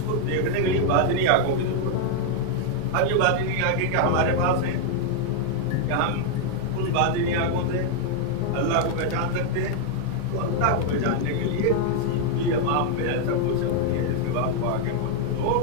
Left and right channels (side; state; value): both; different; correlation 0.00